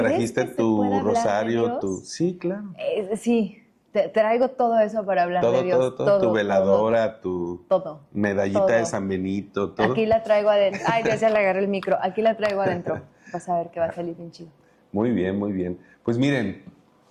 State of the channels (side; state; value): both; identical; correlation 1.00